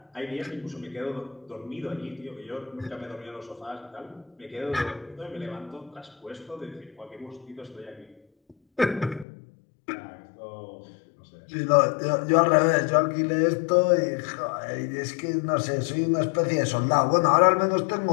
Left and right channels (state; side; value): drops out; right; at 9.2 s